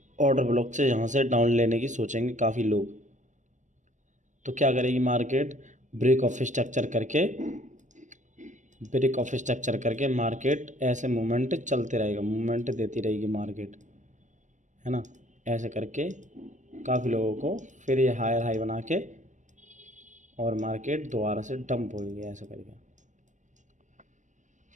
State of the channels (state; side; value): late; left; 0.35 ms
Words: ब्लॉक से यहाँ से डाउन लेने की सोचेंगे काफ़ी लोग। तो क्या करेगी मार्केट, ब्रेक ऑफ स्ट्रक्चर करके मार्केट ऐसे मूवमेंट चलते रहेगा, मूवमेंट देती रहेगी मार्केट, है ना, ऐसे करके काफ़ी लोगों को फिर ये हायर हाई बना के और मार्केट दोबारा से डंप होगी ऐसे करके।